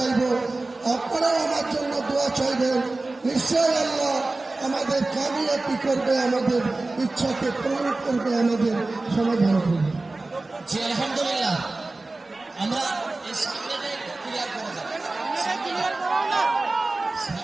আপনারাও আমার জন্য দোয়া চাইবেন। নিশ্চয় আল্লাহ আমাদের কামিয়াবি করবে, আমাদের ইচ্ছাকে পূরণ করবে, আমাদের সমাধান করবে। জি আলহামদুলিল্লাহ, আমরা এই সামনেটা একটু ক্লিয়ার করে যাব,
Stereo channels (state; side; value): quieter; left; 3.2 dB